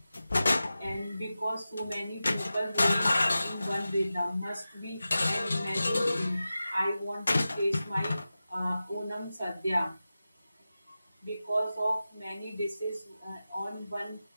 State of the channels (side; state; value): both; inverted; correlation -0.94